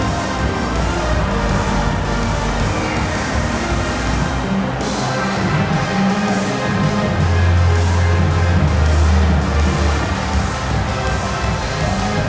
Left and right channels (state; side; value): identical; both; correlation 1.00